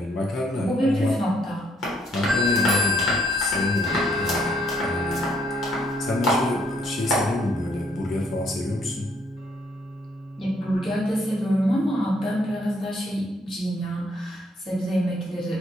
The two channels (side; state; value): both; normal; correlation 0.68